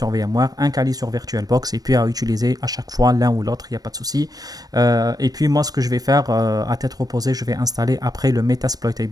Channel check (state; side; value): late; left; 0.18 ms